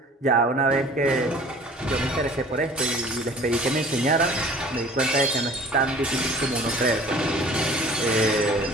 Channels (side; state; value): both; normal; correlation 0.48